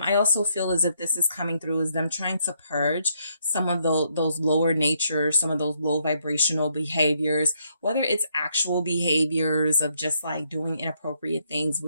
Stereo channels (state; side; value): inverted; both; correlation -0.74